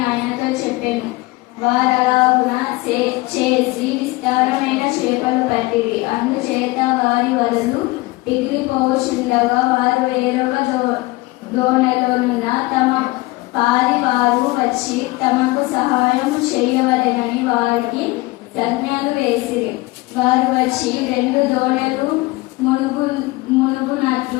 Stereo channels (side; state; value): right; quieter; 21.7 dB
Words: ఆయనతో చెప్పాను. వారలాగున చేసి విస్తారమైన చేపలు పట్టిరి. అందుచేత వారి వలలు పిగిలిపోచుండగా వారు వేరొక దోణెలోనున్న తమ పాది వారు వచ్చి తమకు సహాయం చేయవలెనని వారికి సంజ్ఞలు వేసిరి. వారు వచ్చి రెండు దోణెలు